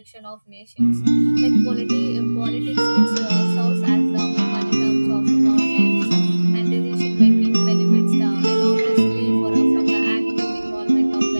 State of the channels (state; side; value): inverted; both; correlation -1.00